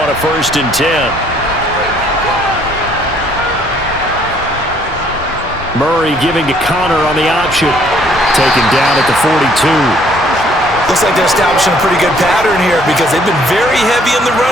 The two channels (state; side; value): normal; both; correlation 0.63